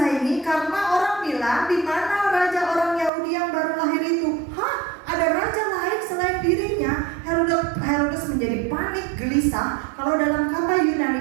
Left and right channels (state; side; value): drops out; left; at 3.1 s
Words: karena orang bilang, di mana raja orang Yahudi yang baru lahir itu? Hah? Ada raja lain selain dirinya? Herodes menjadi panik, gelisah. Kalau dalam kata